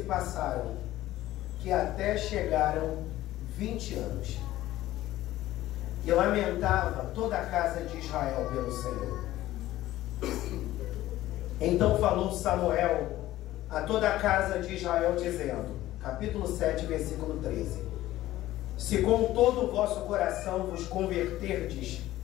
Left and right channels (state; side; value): quieter; right; 15.2 dB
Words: passaram que até chegaram 20 anos. E lamentava toda a casa de Israel pelo Senhor. Então falou Samuel a toda a casa de Israel, dizendo, capítulo 7, versículo 13: se com todo o vosso coração vos converterdes